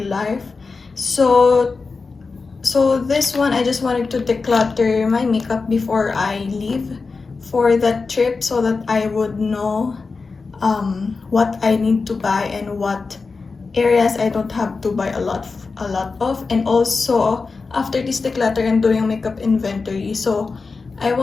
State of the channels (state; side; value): quieter; right; 4.3 dB